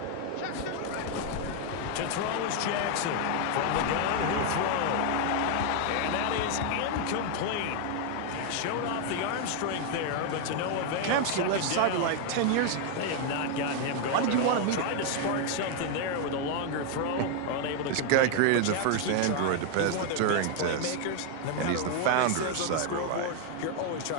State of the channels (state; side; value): different; both; correlation 0.00